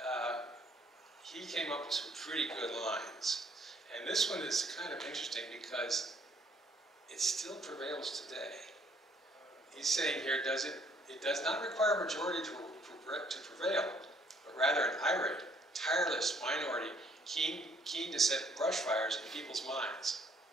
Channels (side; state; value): both; normal; correlation 0.64